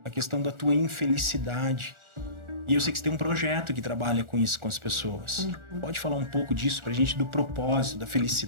a questão da tua infelicidade. E eu sei que você tem um projeto que trabalha com isso com as pessoas. Pode falar um pouco disso pra gente, do propósito, da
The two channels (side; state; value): left; late; 1.4 ms